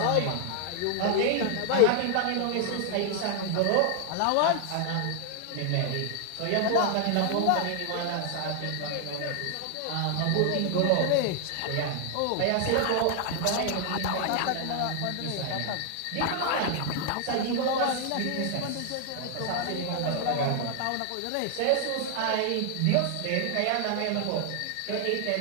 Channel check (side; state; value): both; different; correlation 0.00